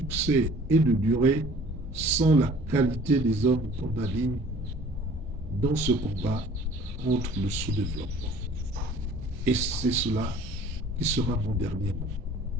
et de durée sans la qualité des hommes qu'on aligne dans ce combat contre le sous-développement. Et c'est cela qui sera mon dernier mot.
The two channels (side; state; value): both; normal; correlation 0.50